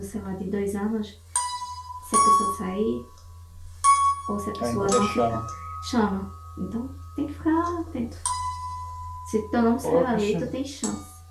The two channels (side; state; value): both; identical; correlation 1.00